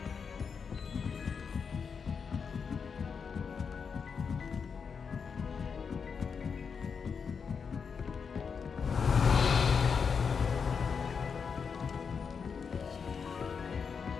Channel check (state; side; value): quieter; right; 6.0 dB